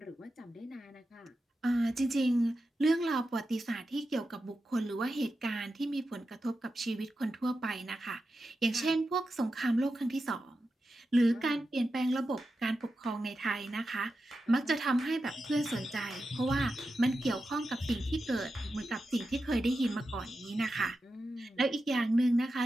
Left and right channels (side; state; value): both; normal; correlation 0.90